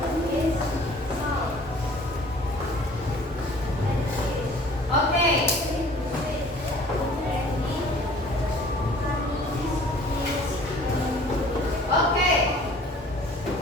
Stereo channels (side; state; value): both; normal; correlation 0.51